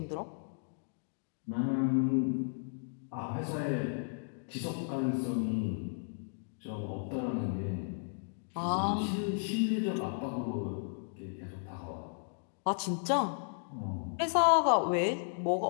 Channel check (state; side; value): silent; right; digital silence